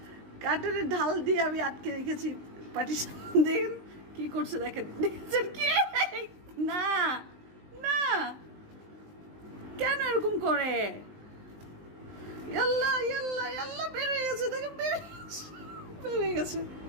কাঠের ঢাল দিয়ে আমি আটকে রেখেছি পার্টিশন। দেখেন কি করছে, দেখেন দেখছেন কি? না না, কেন এরকম করে? ইয়াল্লা ইয়াল্লা ইয়াল্লা, বের হয়ে গেছে, দেখেন বের হয়ে গেছে।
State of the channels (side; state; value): left; late; 19 ms